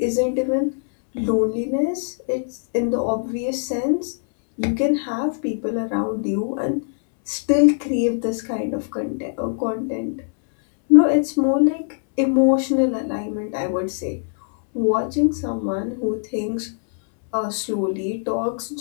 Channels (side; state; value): right; silent; 64 dB below the other